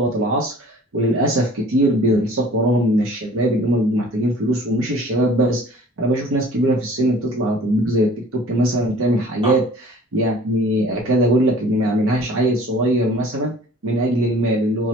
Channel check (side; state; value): both; normal; correlation 0.49